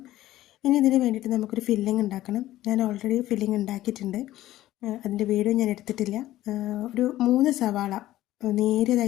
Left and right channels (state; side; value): quieter; right; 14.9 dB